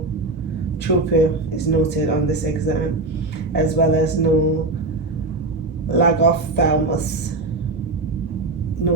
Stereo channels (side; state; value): left; quieter; 3.0 dB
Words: is noted on this exam, as well as no lagophthalmos